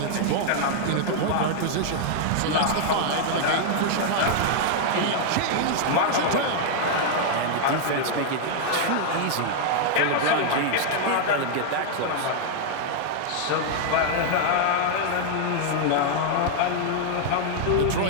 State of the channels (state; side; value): different; both; correlation -0.01